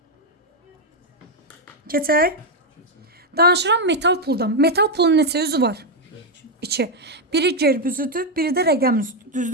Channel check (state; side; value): normal; both; correlation 0.03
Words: Keçək. Danışıram metal puldan. Metal pulun neçə üzü var? 2. Biri gerb üzüdür, biri də rəqəm üzüdür.